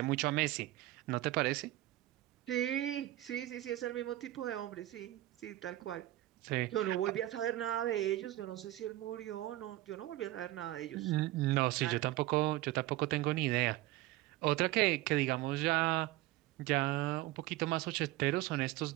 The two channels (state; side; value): quieter; left; 16.3 dB